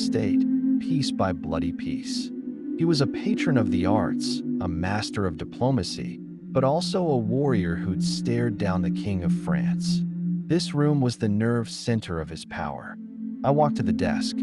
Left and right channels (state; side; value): identical; both; correlation 1.00